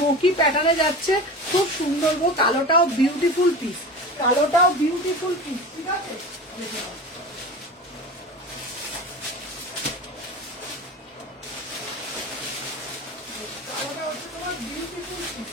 প্যাটার্নে যাচ্ছে, খুব সুন্দর গো। কালোটাও বিউটিফুল পিস, কালোটাও বিউটিফুল পিস। ঠিক আছে, দেখে নাও। কালোটা হচ্ছে তোমার বিউটিফুল পিস,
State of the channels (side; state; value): both; normal; correlation 0.31